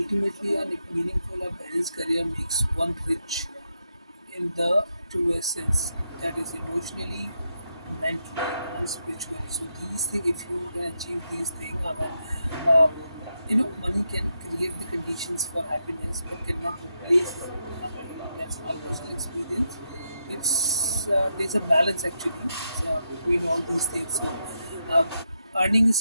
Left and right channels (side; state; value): both; inverted; correlation -0.83